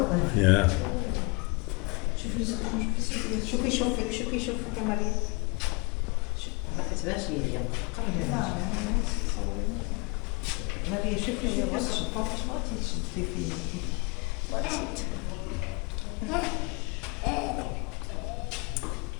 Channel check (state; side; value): quieter; right; 29.9 dB